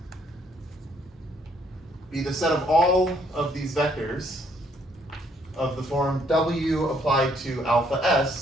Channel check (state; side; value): normal; both; correlation 0.68